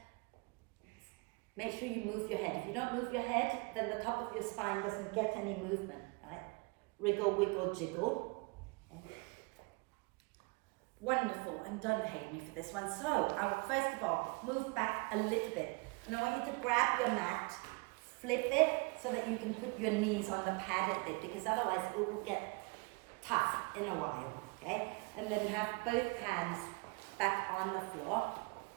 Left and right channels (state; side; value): quieter; left; 29.9 dB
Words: Make sure you move your head. If you don't move your head, then the top of your spine doesn't get any movement. Right? Wriggle, wiggle, jiggle. Okay. Wonderful, and don't hate me for this one. So, first of all, move back a little bit. And I want you to grab your mat, flip it so that you can put your knees on the pad a bit, because otherwise it will get tough in a while, okay? And then have both hands back on the floor.